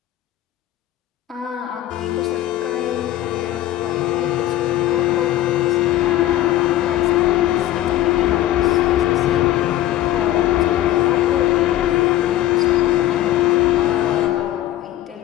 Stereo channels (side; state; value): right; quieter; 14.0 dB